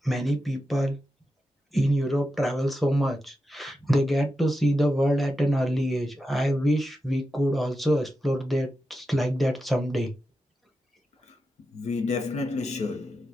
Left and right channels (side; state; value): both; normal; correlation 0.89